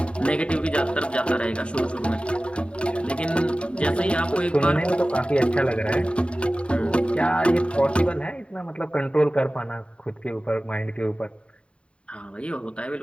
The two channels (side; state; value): right; late; 0.058 ms